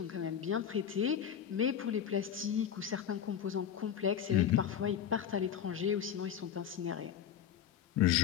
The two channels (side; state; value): right; quieter; 9.0 dB